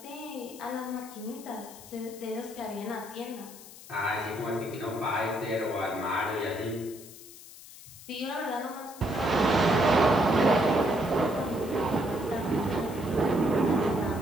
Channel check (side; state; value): left; noise; hiss, 17 dB below the sound